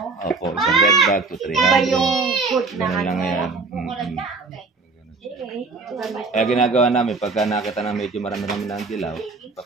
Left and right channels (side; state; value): left; quieter; 4.0 dB